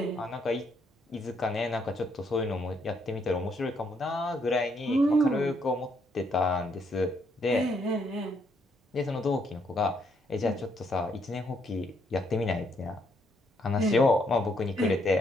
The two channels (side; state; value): both; normal; correlation 0.72